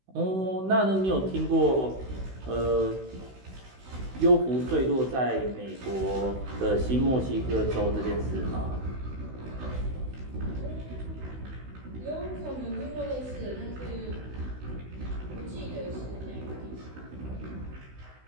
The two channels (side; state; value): left; late; 16 ms